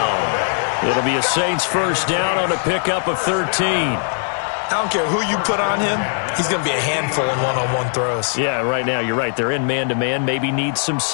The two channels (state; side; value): silent; right; 66 dB below the other